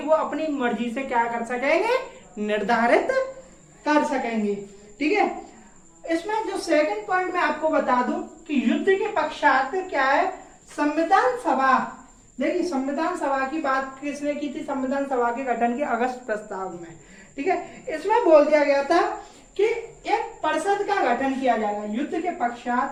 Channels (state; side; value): identical; both; correlation 1.00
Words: वो अपनी मर्जी से क्या कर सकेंगे, निर्धारित कर सकेंगे, ठीक है। इसमें जो सेकंड पॉइंट मैं आपको बता दूं कि युद्ध के पश्चात क्या है, संविधान सभा, देखिए संविधान सभा की बात किसने की थी, संविधान सभा के गठन के अगस्त प्रस्ताव में, ठीक है। इसमें बोल दिया गया था कि एक परिषद का गठन किया जाएगा युद्ध के